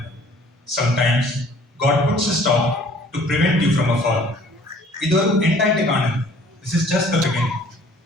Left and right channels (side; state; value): both; normal; correlation 0.54